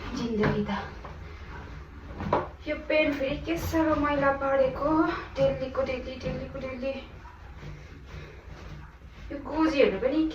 जिन्दगी त। यो पेन फेरि के साह्रो मैला परेको डेलीको डेली डेलीको डेली। यो गोजीहरू पनि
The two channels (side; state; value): both; identical; correlation 1.00